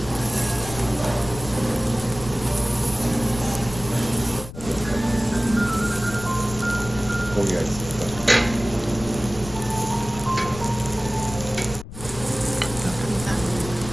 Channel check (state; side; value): noise; left; rumble, 13 dB below the sound